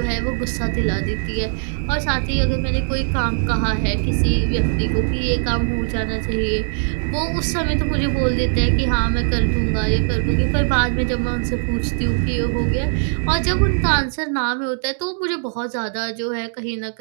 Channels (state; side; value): silent; left; digital silence